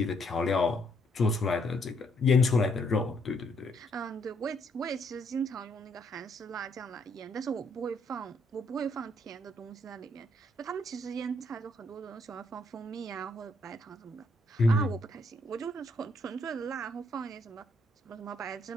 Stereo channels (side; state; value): both; normal; correlation 0.71